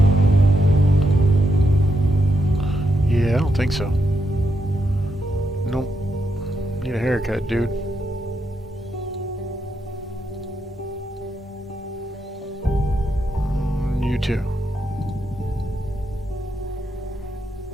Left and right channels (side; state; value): both; normal; correlation 0.82